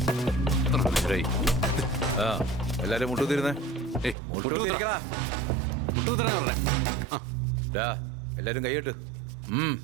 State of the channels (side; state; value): left; drops out; at 4.2 s